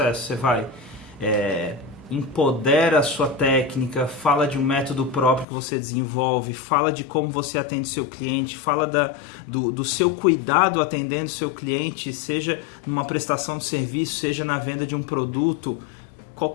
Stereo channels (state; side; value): drops out; right; at 5.5 s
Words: você vai empodera a sua técnica, fala de um método próprio que você desenvolve, fala de como você atende seu cliente, fala do seu cuidado atendendo seu cliente, seja numa prestação de serviço, seja na venda de um produto,